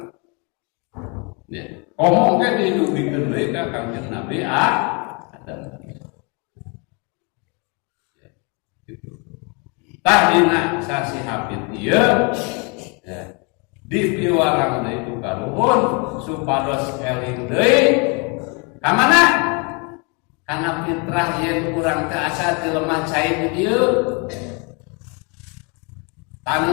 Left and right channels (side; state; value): right; quieter; 32.8 dB